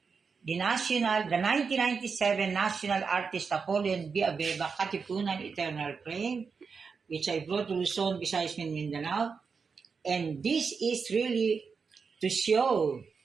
the 1997 National Artist Napoleon B. Abeba, Katipunan Eternal Flame, which I brought to Luzon, Visayas, and Mindanao. And this is really to show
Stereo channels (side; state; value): left; quieter; 5.4 dB